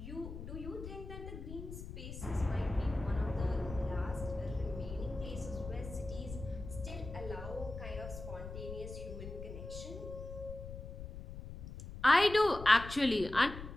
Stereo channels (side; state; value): left; noise; rumble, 10 dB below the sound